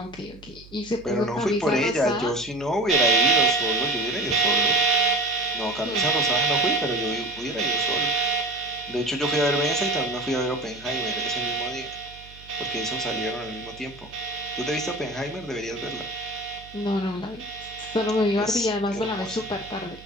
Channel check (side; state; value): right; noise; hum, 21 dB below the sound